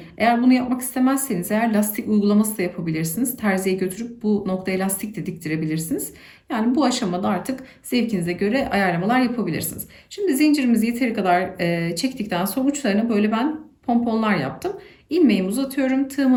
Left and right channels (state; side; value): identical; both; correlation 1.00